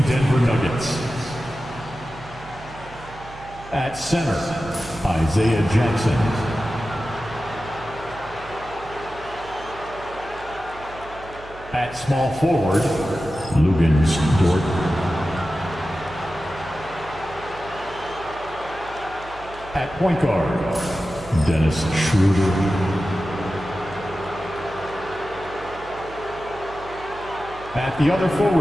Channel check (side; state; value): right; noise; hum, 18 dB below the sound